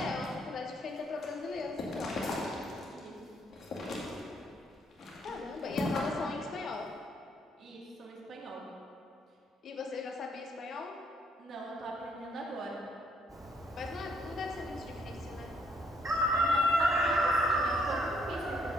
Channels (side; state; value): both; normal; correlation 0.69